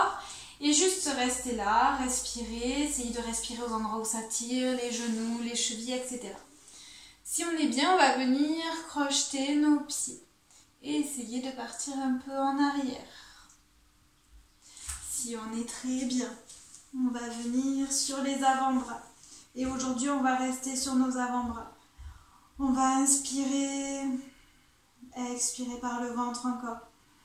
Et juste rester là, respirer, essayer de respirer aux endroits où ça tire, les genoux, les chevilles, etc. Si on est bien, on va venir crocheter nos pieds et essayer de partir un peu en arrière. Si on est très bien, on va venir sur les avant-bras. Et aujourd'hui, on va rester sur nos avant-bras. On va inspirer, expirer par le ventre encore.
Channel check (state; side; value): identical; both; correlation 1.00